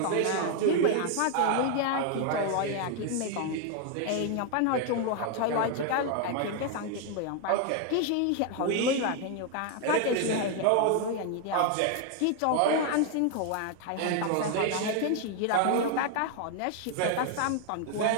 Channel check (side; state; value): both; different; correlation 0.01